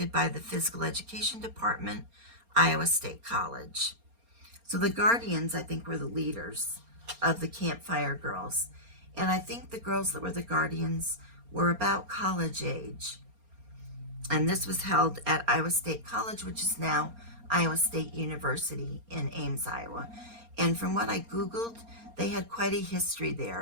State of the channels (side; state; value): left; late; 4.3 ms